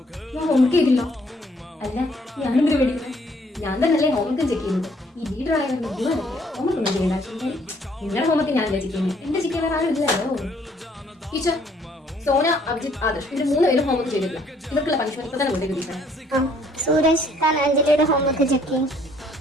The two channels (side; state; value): both; normal; correlation 0.64